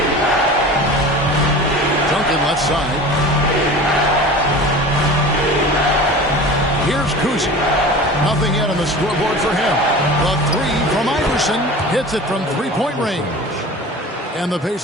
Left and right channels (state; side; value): normal; both; correlation 0.37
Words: Duncan left side. Here's Kuzi. Nothing yet on the scoreboard for him. The three from Iverson hits it from three-point range. And the